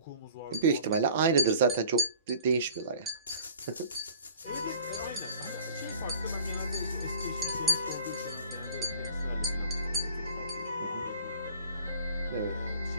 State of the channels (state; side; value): inverted; both; correlation -0.46